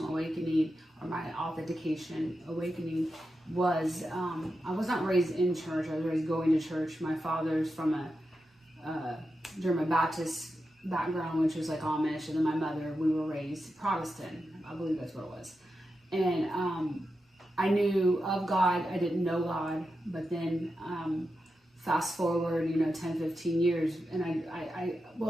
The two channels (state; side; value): normal; both; correlation 0.89